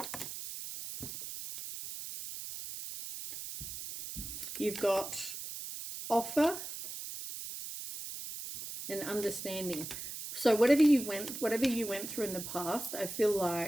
You've got offer and understanding. So whatever you went through in the past, I feel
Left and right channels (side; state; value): right; noise; hiss, 8 dB below the sound